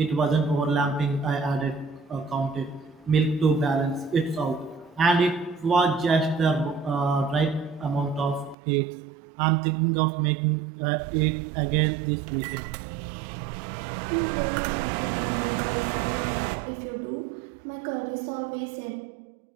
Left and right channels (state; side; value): drops out; left; at 8.6 s